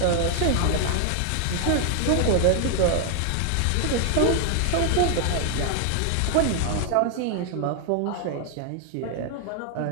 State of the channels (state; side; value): different; both; correlation 0.00